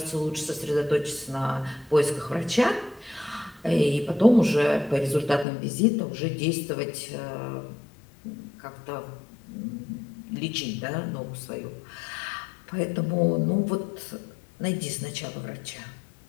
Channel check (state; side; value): drops out; right; at 5.5 s